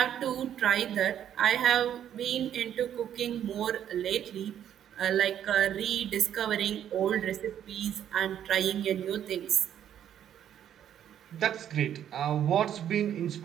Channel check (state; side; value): quieter; left; 10.1 dB